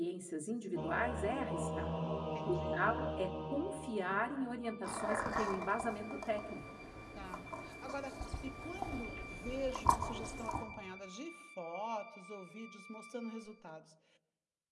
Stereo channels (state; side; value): identical; both; correlation 1.00